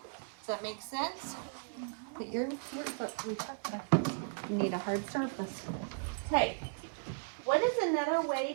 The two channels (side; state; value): left; silent; digital silence